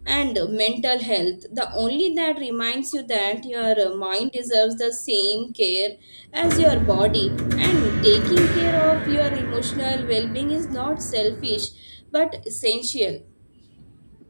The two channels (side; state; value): both; inverted; correlation -1.00